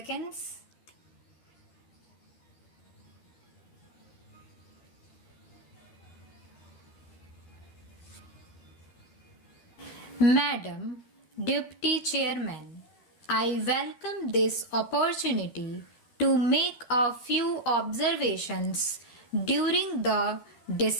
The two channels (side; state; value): right; late; 12 ms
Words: Madam Deputy Chairman, I welcome this opportunity to make a few observations during the